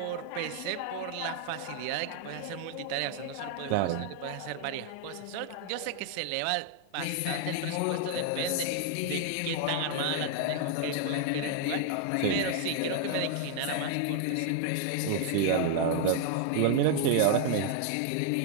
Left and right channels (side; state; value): both; different; correlation 0.00